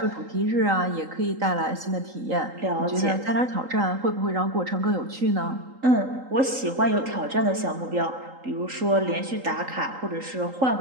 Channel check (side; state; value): left; late; 3.8 ms